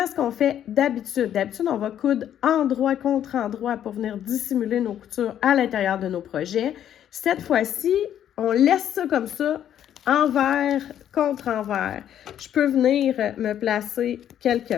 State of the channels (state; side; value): quieter; right; 10.3 dB